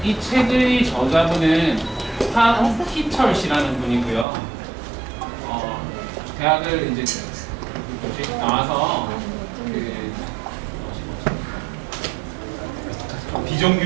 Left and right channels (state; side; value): drops out; left; at 4.2 s